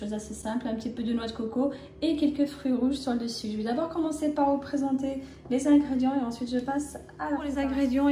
d'assez simple, un petit peu de noix de coco et quelques fruits rouges sur le dessus. Je vais d'abord commencer par vous présenter les ingrédients et ensuite je passe à pour les ingrédients.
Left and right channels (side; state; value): both; identical; correlation 1.00